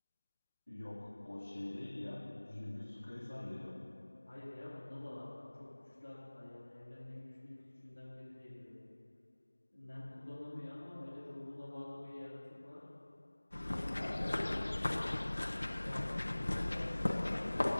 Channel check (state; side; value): inverted; both; correlation -1.00